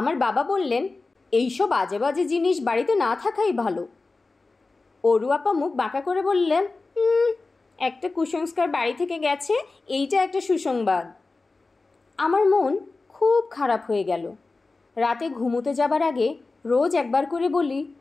বাবা বললেন, এইসব আজে বাজে জিনিস বাড়িতে না থাকাই ভালো। অরু আপা মুখ বাঁকা করে বললেন, একটা কুসংস্কার বাড়ি থেকে গেছে, এইটা একটা সুসংবাদ। আমার মন খুব খারাপ হয়ে গেল। রাতে ঘুমোতে যাবার আগে রোজ একবার করে বলি,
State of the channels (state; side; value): quieter; right; 3.6 dB